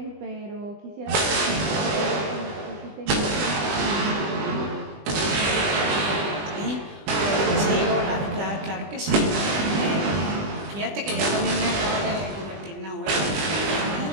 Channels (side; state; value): left; late; 20 ms